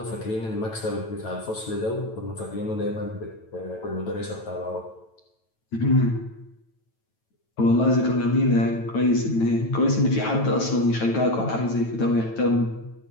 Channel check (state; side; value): late; right; 9.1 ms